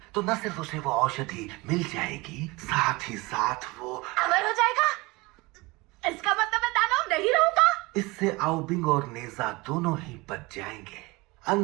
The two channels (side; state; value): left; quieter; 23.5 dB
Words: तो न सिर्फ उसे वो औषधि मिल जाएगी, साथ ही साथ वो अमर हो जाएगा। इसका मतलब मैं दानव नहीं रहूंगा। इससे आओबिंग और नेजा दोनों ही बच जाएंगे।